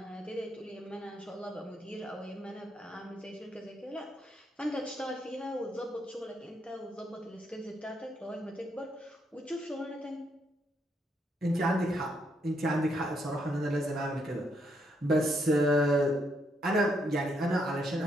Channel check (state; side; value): normal; both; correlation 0.76